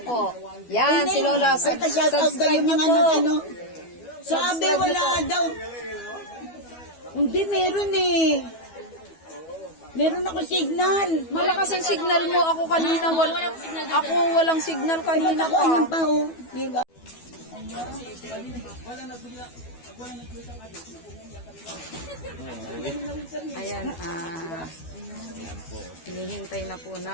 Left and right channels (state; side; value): late; right; 12 ms